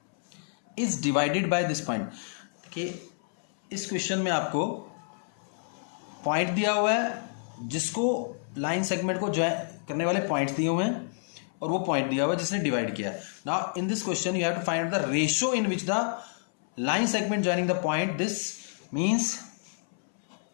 is divided by this point. देखिए इस क्वेश्चन में आपको पॉइंट दिया हुआ है जिसको लाइन सेगमेंट को ज्वाइन करने वाले पॉइंट्स दिए हुए हैं और वो पॉइंट दिया हुआ है जिसने डिवाइड किया है. Now in this question you have to find the ratio in which the line segment joining the point. This means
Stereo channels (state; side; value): silent; right; 59 dB below the other